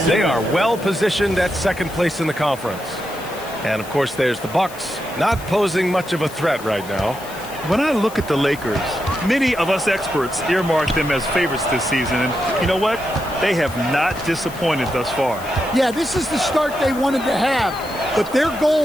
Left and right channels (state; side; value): noise; left; hiss, 17 dB below the sound